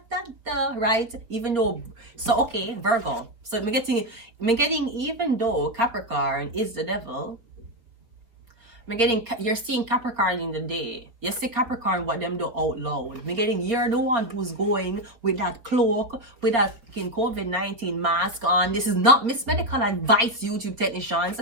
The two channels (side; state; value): left; late; 4.3 ms